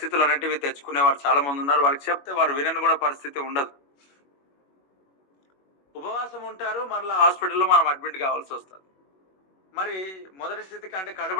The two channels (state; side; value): late; right; 21 ms